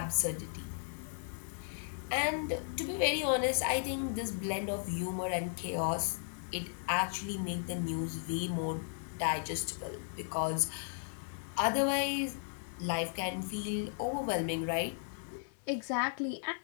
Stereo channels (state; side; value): silent; right; 54 dB below the other